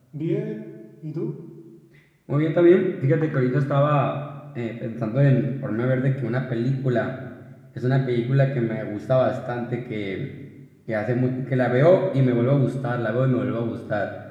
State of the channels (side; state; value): both; identical; correlation 1.00